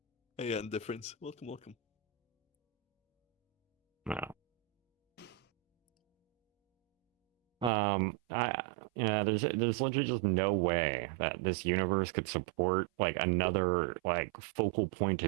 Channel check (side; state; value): left; drops out; at 7.7 s